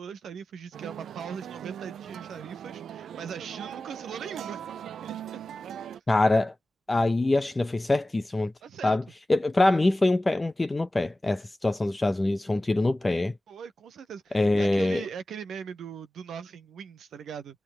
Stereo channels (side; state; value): both; normal; correlation 0.96